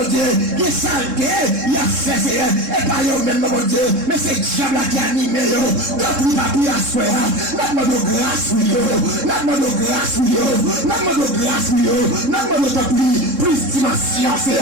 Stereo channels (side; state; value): left; late; 3.7 ms